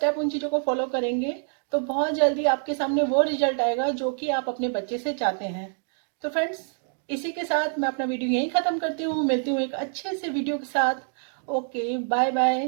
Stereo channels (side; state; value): left; silent; 61 dB below the other